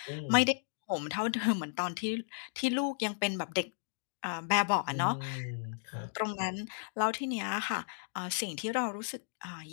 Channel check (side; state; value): right; silent; digital silence